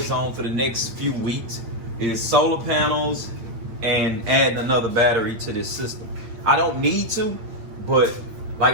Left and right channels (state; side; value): late; left; 8.8 ms